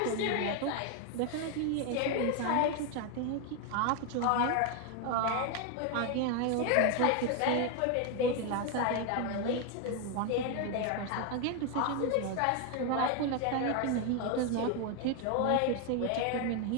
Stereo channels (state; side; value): different; both; correlation 0.01